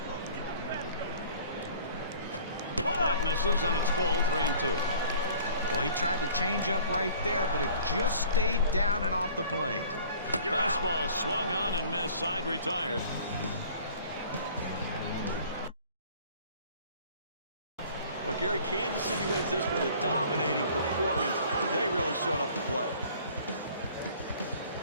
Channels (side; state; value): both; inverted; correlation -0.51